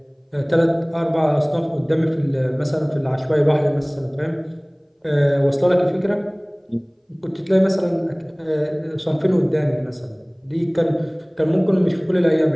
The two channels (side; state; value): both; identical; correlation 1.00